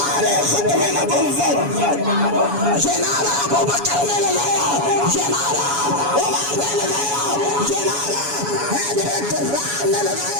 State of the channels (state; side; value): late; left; 7.1 ms